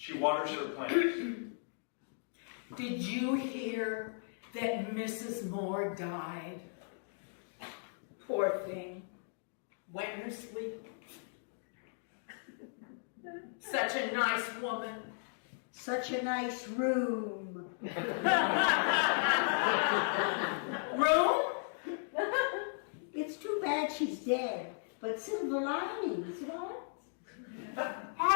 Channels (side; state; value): right; silent; digital silence